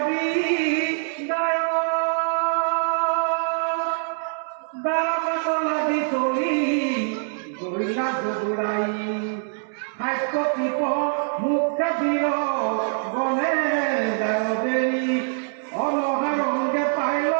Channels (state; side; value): silent; left; 63 dB below the other